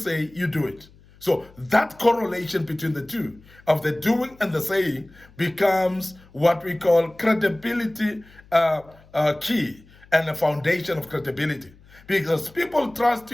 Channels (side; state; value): left; noise; hum, 26 dB below the sound